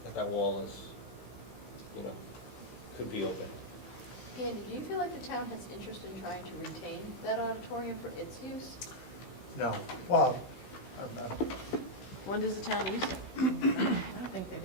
that wall is, could be open. Andy, do you feel like the town has interest in trying to retain that auditorium for its use? No, well, When does the town use it? I don't think they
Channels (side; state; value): right; late; 16 ms